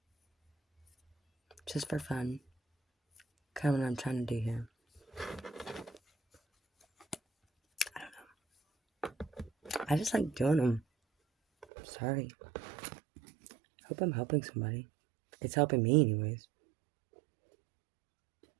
just for fun. Kind of what I'm trying to do here. I don't know. I just like doing them. Sorry. Hope I'm helping somebody. It's helping me anyways.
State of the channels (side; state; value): left; drops out; at 11.7 s